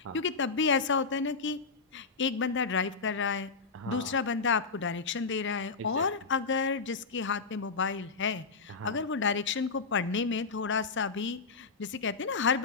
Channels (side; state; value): right; quieter; 4.7 dB